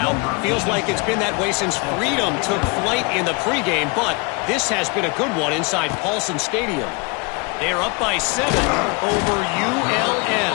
Feels like it's been that way since Freedom took flight in the pregame, but this has been a good one inside Paulson Stadium. They're up by 7 over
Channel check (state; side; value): quieter; right; 30.1 dB